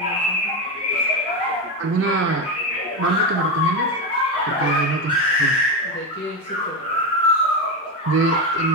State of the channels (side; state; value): both; normal; correlation 0.14